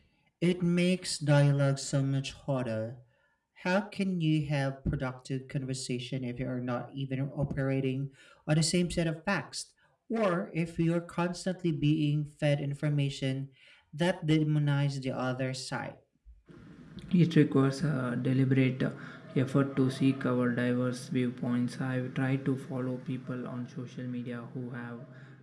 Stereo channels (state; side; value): identical; both; correlation 1.00